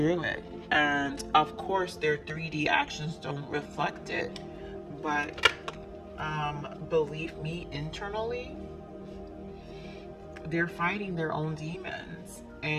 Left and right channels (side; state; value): both; identical; correlation 1.00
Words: it. And of course, their 3D actions don't reflect it. But believe me, internally, they're fighting their own demons.